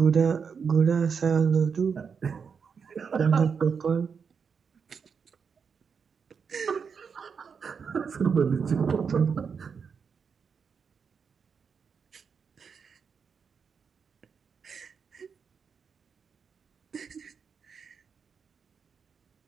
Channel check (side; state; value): left; quieter; 6.1 dB